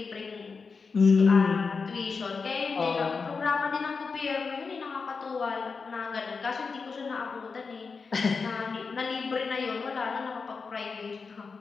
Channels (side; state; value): right; quieter; 4.9 dB